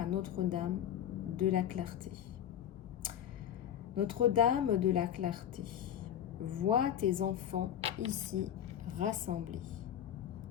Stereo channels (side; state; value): right; quieter; 10.1 dB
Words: Notre-Dame de la Clarté. Notre-Dame de la Clarté, vois tes enfants ici rassemblés.